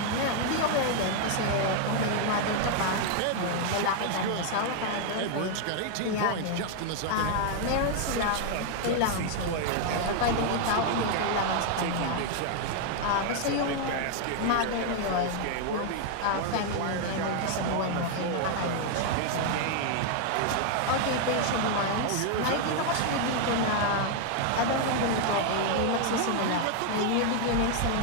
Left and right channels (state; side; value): different; both; correlation 0.00